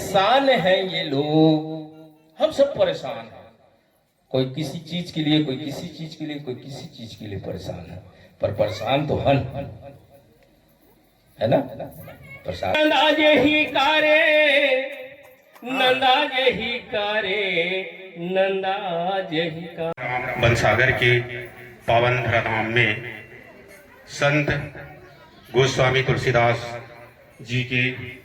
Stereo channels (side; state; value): both; identical; correlation 1.00